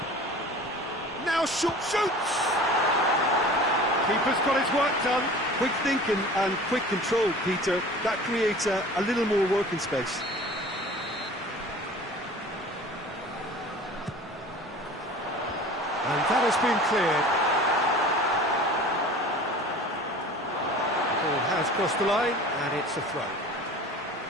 Now shoots! Keeper's got his work done. Quick thinking and quick control, Peter. That creates a little more working space. And that has been cleared. The ball has crossed the line, and it's a throw.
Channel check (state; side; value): normal; both; correlation 0.42